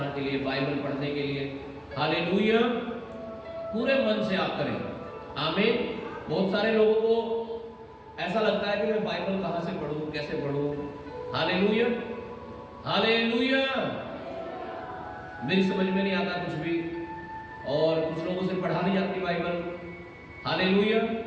के लिए, बाइबल पढ़ने के लिए, हालेलुया, पूरे मन से आप करें। आमीन। बहुत सारे लोगों को ऐसा लगता है कि मैं बाइबल कहां से पढ़ूं, कैसे पढ़ूं। Hallelujah, hallelujah. मेरी समझ में नहीं आता कुछ भी, और कुछ लोगों से पढ़ा नहीं जाती बाइबल। हालेलुया।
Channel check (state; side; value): identical; both; correlation 1.00